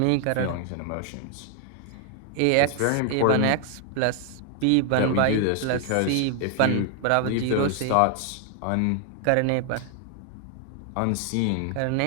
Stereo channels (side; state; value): both; different; correlation 0.00